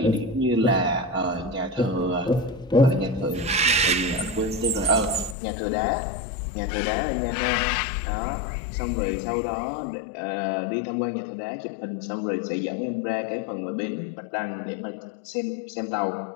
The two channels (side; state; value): right; drops out; at 5.4 s